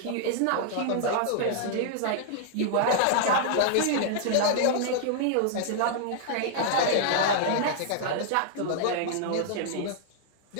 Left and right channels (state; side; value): different; both; correlation -0.01